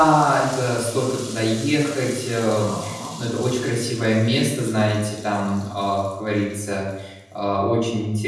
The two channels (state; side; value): identical; both; correlation 1.00